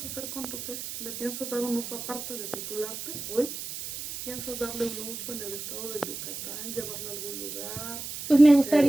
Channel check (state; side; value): noise; right; hiss, 8 dB below the sound